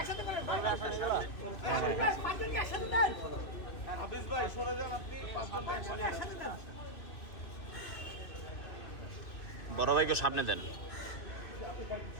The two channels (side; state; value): right; late; 2.6 ms